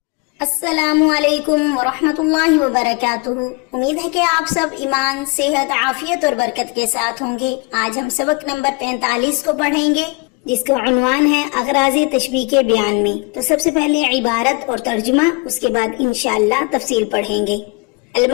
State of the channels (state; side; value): quieter; right; 30.5 dB